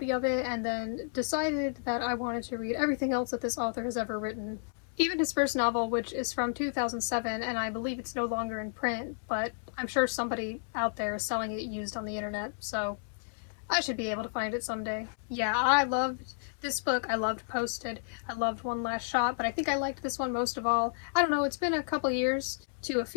of it, and then decided that I wanted to read everything else that this author has ever written. Even his first novel, which is from 2007, and I believe it's no longer in print, but I'm sure somebody out there is selling it used on the internet, so I should be able to find it someday. Yeah, I loved this book. I loved Posted. I loved One Last Shot, but I think I liked this one most of all. I don't know, it's been a couple years to a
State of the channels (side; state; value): right; silent; digital silence